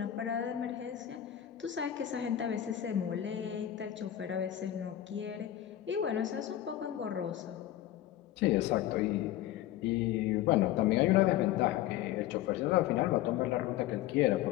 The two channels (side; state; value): right; quieter; 12.6 dB